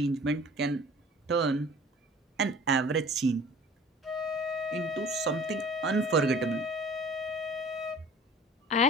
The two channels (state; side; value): normal; both; correlation 0.47